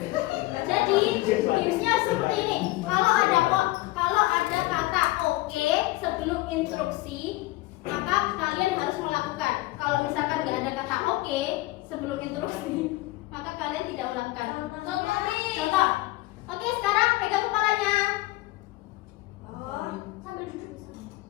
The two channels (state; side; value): quieter; right; 19.2 dB